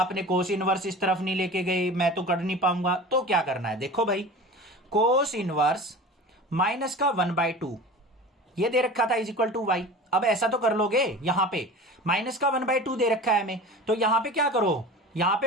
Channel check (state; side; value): normal; both; correlation 0.36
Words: कोस इनवर्स इस तरफ नहीं लेके गए, मैं तो कर नहीं पाऊंगा। तो क्या करना है, देखो भाई, कोस इनवर्स माइनस का 1/2 ये दे रखा था इज इक्वल टू y। अब ऐसा तो कर लोगे, यहां पे माइनस का 1/2 दे रखा है हमें, तो यहां पे क्या करो, यहां